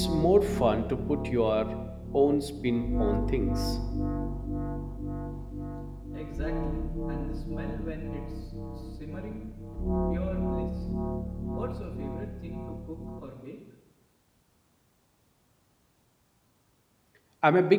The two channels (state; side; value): identical; both; correlation 1.00